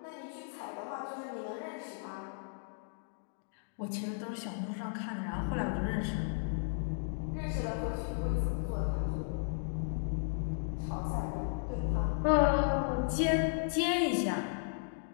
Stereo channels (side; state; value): right; silent; digital silence